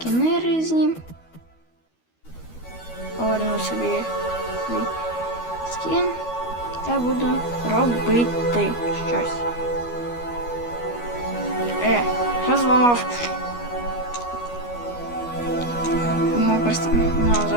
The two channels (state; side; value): late; right; 12 ms